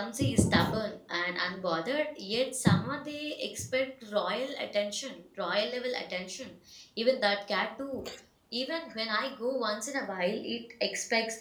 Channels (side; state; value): both; identical; correlation 1.00